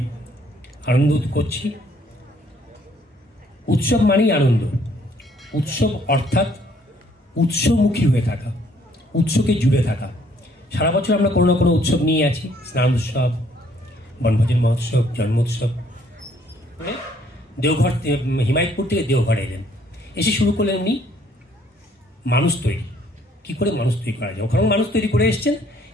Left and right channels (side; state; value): both; normal; correlation 0.64